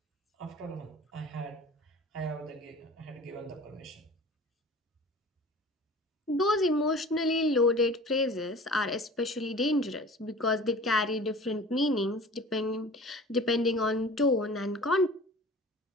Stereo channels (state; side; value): normal; both; correlation 0.42